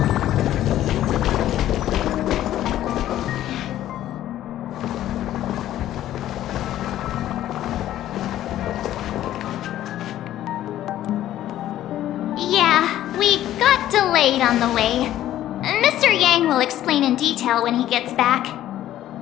Yeah, we got delayed on the way. Mr. Yang will explain in detail when he gets back.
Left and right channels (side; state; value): right; quieter; 12.9 dB